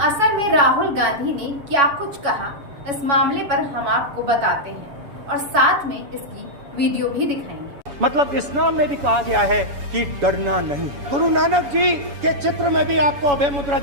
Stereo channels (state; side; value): late; left; 7.1 ms